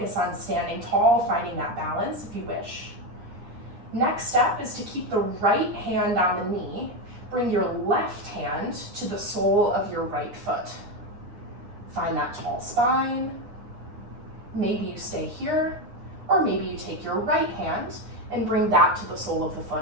on standing tall, finding that balance if you wish. Next step is to keep the right hand on the knee. Bring your left hand to the sole of your right foot. Find that tall spine. Maybe you stay here, or maybe you take your right hand and bring that to the sole of the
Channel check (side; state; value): left; late; 9.8 ms